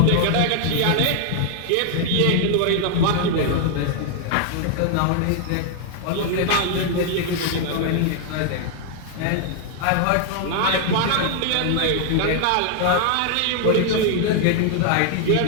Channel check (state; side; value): different; both; correlation 0.00